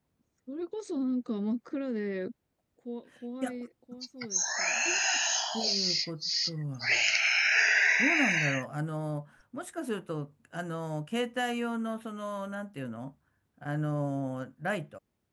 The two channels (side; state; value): both; identical; correlation 1.00